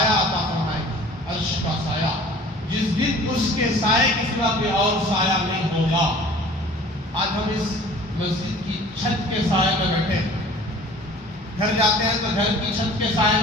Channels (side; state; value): both; normal; correlation 0.47